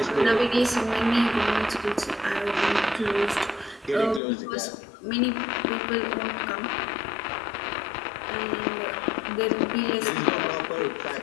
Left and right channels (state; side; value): drops out; right; at 4.2 s